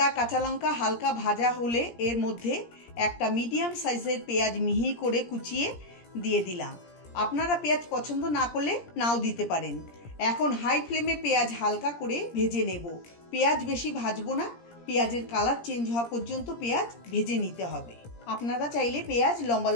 কাঁচা লঙ্কা হালকা ভাজা হলে এর মধ্যে একটা মিডিয়াম সাইজের পেঁয়াজ মিহি করে কুচিয়ে দিয়ে দিলাম। আপনারা পেঁয়াজ পছন্দ না করলে নাও দিতে পারেন। এখন হাই ফ্লেমে পেঁয়াজ হালকা করে ভেজে নেব। পেঁয়াজ বেশি ভাজবো না, পেঁয়াজের কালার চেঞ্জ হওয়া পর্যন্ত পেঁয়াজ ভেজে নিতে হবে। আপনারা চাইলে পেঁয়াজ লম্বা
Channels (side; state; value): right; late; 17 ms